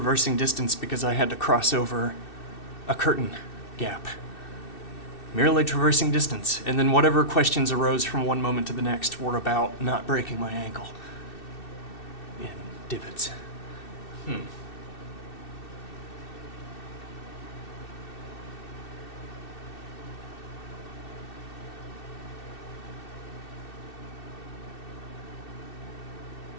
distance because I had to cross over a curtain gap. Merely traversing distance, and then whatever questions arose from one moment to the next were about not breaking my ankle in divots.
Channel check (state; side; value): late; right; 2.6 ms